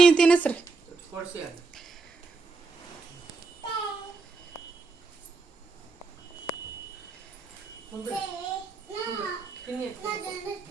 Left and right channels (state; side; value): quieter; left; 4.2 dB